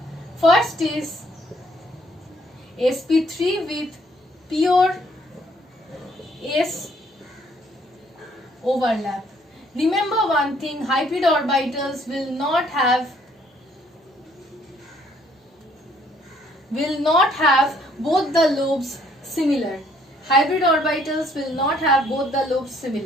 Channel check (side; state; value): both; normal; correlation 0.64